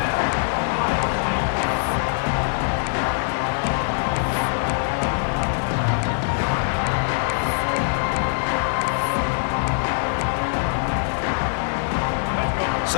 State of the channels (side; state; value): right; silent; digital silence